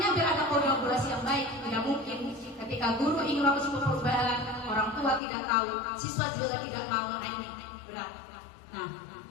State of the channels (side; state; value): right; drops out; at 5.2 s